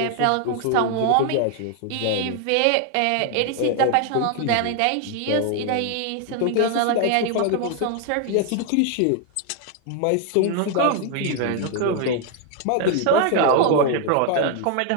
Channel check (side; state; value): both; different; correlation 0.00